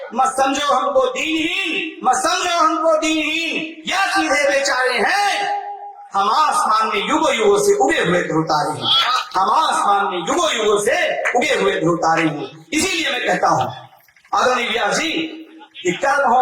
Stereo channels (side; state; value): both; identical; correlation 1.00